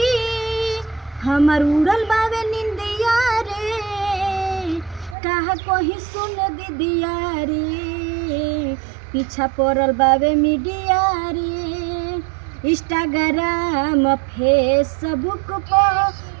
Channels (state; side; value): drops out; left; at 5.2 s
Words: हमर उड़ल बावे निंदिया रे। कहा कोही सुन दीदिया रे, पीछा पड़ल बावे मीडिया रे। इंस्टाग्राम फेसबुक पर